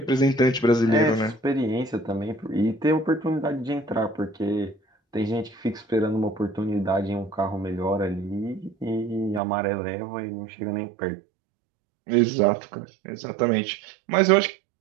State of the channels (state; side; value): drops out; left; at 9.4 s